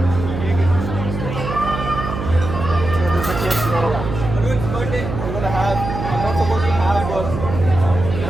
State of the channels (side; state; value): right; noise; hum, 6 dB below the sound